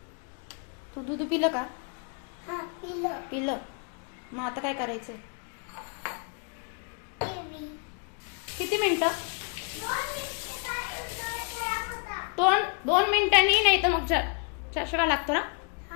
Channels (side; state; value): right; quieter; 39.5 dB